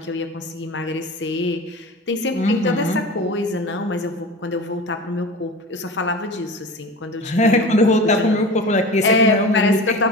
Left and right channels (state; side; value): normal; both; correlation 0.34